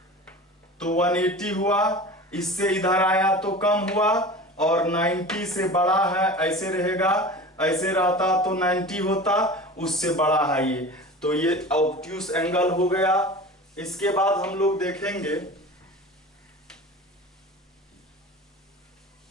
तो 180 हुआ, इससे इधर आया तो कम हुआ, और 90 से बड़ा है ऐसे रहेगा, ऐसे रहता तो 90 होता, उससे बड़ा है ये, तो ये ऑब्ट्यूस एंगल हो गया। इसके बाद हम लोग देखेंगे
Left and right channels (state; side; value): normal; both; correlation 0.35